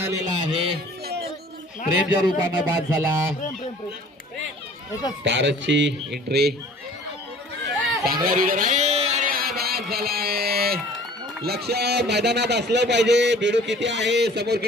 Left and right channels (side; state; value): both; normal; correlation 0.50